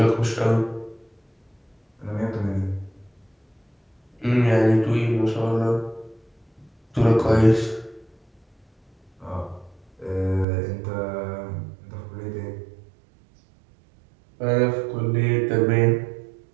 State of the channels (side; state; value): left; drops out; at 10.5 s